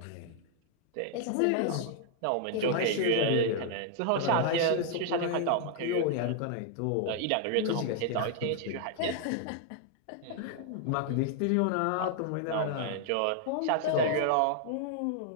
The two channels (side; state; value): both; different; correlation 0.00